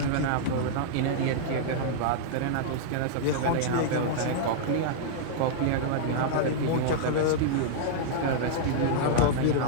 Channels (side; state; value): both; different; correlation -0.02